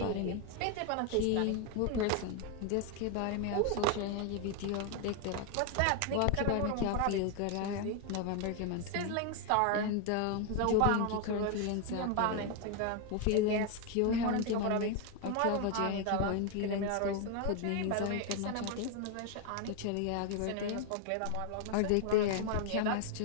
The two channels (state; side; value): different; both; correlation 0.01